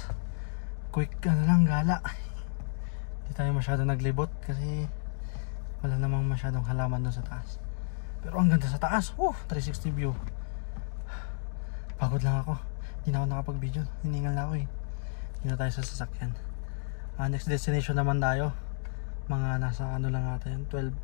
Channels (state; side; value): silent; right; digital silence